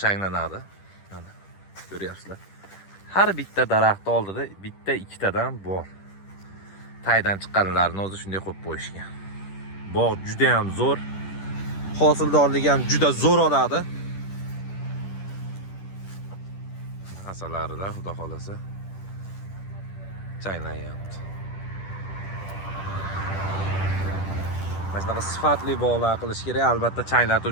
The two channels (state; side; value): late; right; 10 ms